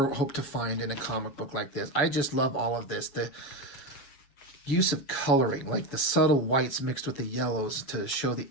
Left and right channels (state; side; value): late; right; 7.2 ms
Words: hope to find in a comic book like this. I just love all of this. The use of coloring, like the subtle whites mixed with the yellows to show the